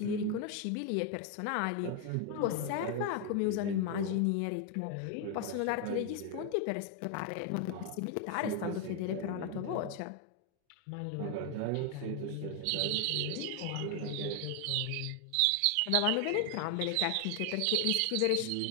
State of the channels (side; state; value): both; different; correlation 0.01